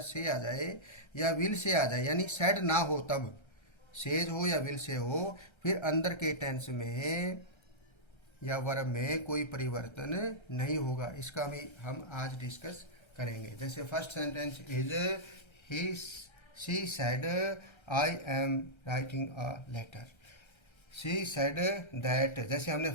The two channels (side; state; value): right; late; 1.3 ms